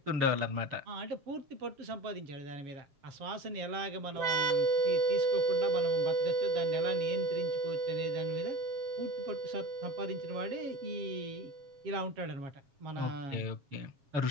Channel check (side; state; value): left; late; 7.3 ms